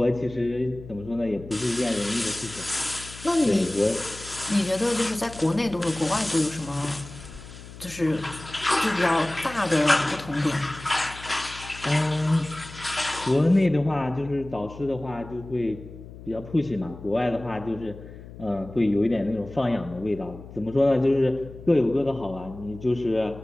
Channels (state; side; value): noise; left; hum, 16 dB below the sound